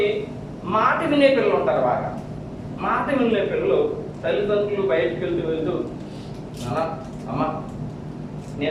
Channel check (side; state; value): both; identical; correlation 1.00